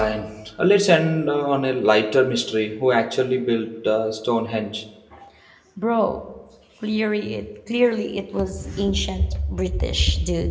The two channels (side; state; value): both; identical; correlation 1.00